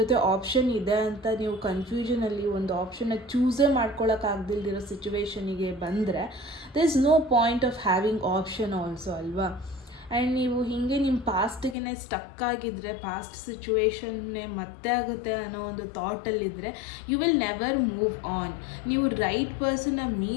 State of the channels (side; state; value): right; drops out; at 11.8 s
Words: ಆಪ್ಷನ್ ಇದೆ ಅಂತ ನೀವು ಕನ್ಫ್ಯೂಷನಲ್ಲಿ ಒಂದು ಆಪ್ಷನ್ನ ಚೂಸೇ ಮಾಡ್ಕೊಳ್ಳೋಕ್ಕಾಗ್ದಿಲ್ದಿರೋ ಸಿಚುವೇಶನಿಗೆ ಬಂದರೆ there is no point of having option also ಅಲ್ವಾ. ಆ್ಯಂಡ್ ನೀವು ಹೀಗೆ ನಿಮ್ಮ ಪಾಸ್ಟಿಗೆ ಸ್ಟಕ್ ಆಗಿದ್ದರೆ, ಪಾಸ್ಟ್ ಸಿಚುವೇಶನ್ನೇ ಮತ್ತೆ ಆಗುತ್ತೆ ಅನ್ನೋ ಒಂದು ಥಾಟಲ್ಲಿದ್ದರೆ you will never move on. ನೀವು ರೈಟ್ ಪರ್ಸನ್ನ